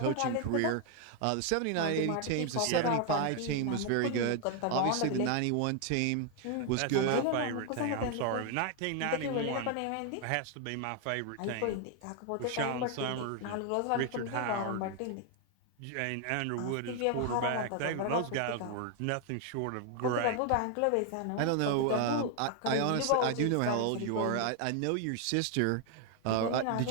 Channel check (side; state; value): both; different; correlation 0.00